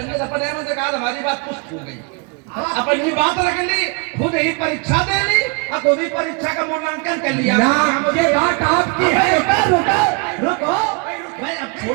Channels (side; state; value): left; quieter; 31.1 dB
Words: अपने मन से कहा हमारी बात पुष्ट हो गई। अपनी बात रख ली, खुद ही परीक्षा दे ली और खुद ही परीक्षा का मूल्यांकन कर लिया। ये बात आपकी है। रुको रुको रुको भाई अब